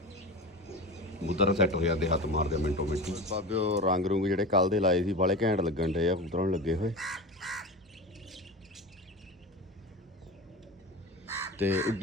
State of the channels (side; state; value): both; normal; correlation 0.29